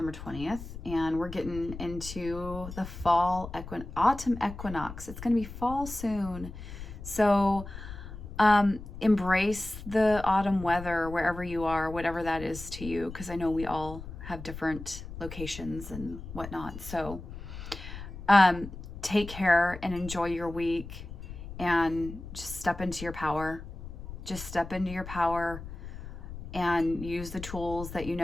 20th, and we're getting into the autumn equinox. It's going to be fall soon. So embrace the autumn weather wherever you are, whatever that is to you, because I know we all have different locations and whatnot. So take care and enjoy your week. And just step into your power. Just step into your power and use the tools that you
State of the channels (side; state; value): left; noise; rumble, 11 dB below the sound